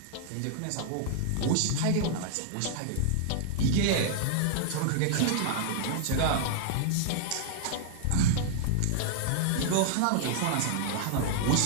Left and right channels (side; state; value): both; different; correlation -0.01